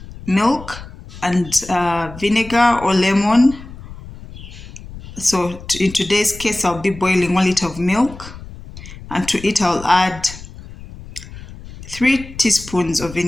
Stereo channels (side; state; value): left; noise; rumble, 15 dB below the sound